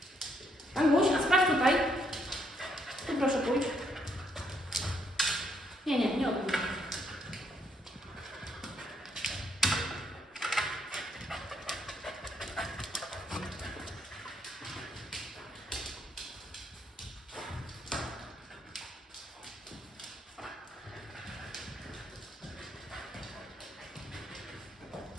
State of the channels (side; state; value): both; normal; correlation 0.73